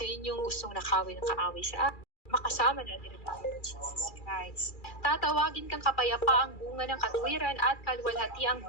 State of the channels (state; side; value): late; right; 2.4 ms